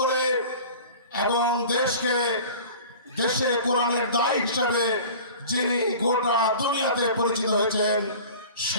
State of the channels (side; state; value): both; inverted; correlation -0.41